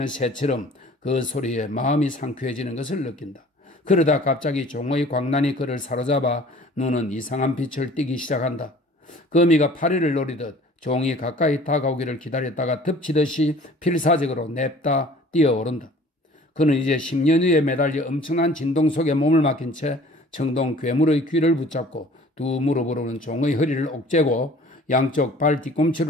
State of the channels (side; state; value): both; normal; correlation 0.49